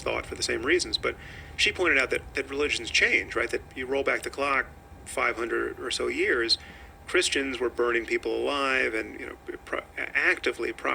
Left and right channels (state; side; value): identical; both; correlation 1.00